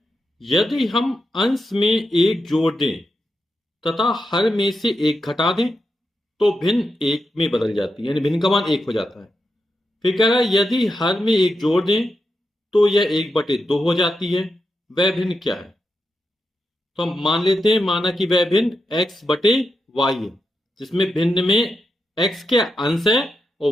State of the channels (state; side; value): normal; both; correlation 0.86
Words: यदि हम अंश में एक जोड़ दें तथा हर में से एक घटा दें तो भिन्न एक में बदल जाती है, यानी भिन्न का मान एक हो जाता है। फिर कह रहा है यदि हर में एक जोड़ दें तो यह 1/2 हो जाती है, वह भिन्न क्या है? तो हम मान लेते हैं, माना कि वह भिन्न x/y है, जिसमें भिन्न में x क्या अंश है और